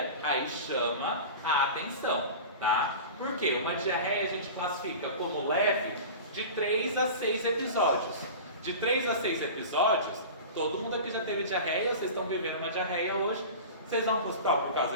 aí chama a atenção, tá? Por quê? Uma diarreia a gente classifica como leve de 3 a 6 episódios. De 3 a 6 episódios, todo mundo aqui já teve diarreia, vocês estão vivendo uma diarreia hoje. Vocês vão para o hospital por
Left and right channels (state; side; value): inverted; both; correlation -0.33